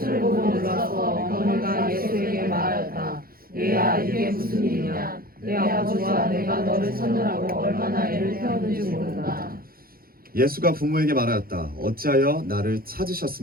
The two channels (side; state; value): left; late; 0.43 ms